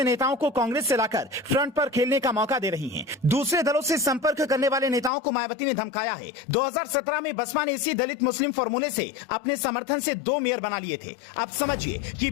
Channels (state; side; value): drops out; right; at 5.1 s